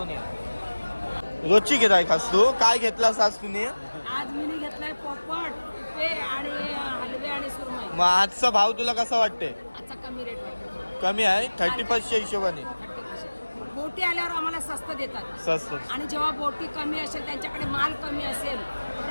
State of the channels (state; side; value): inverted; both; correlation -1.00